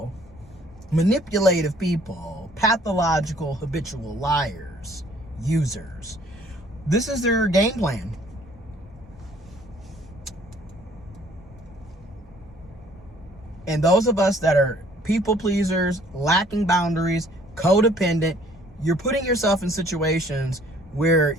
manipulative people, pathological, habitual liars, users. This is their game plan. And those of us that are people pleasers, lacking boundaries, codependent, you're putting yourself in situations where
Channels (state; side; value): normal; both; correlation 0.58